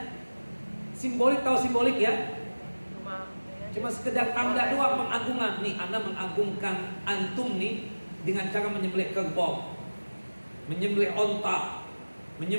simbolik, tahu simbolik ya? Cuma sekedar tanda doang pengagungan. Nih, Anda mengagungkan antum nih dengan cara menyembelih kerbau, menyembelih onta,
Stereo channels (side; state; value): both; inverted; correlation -1.00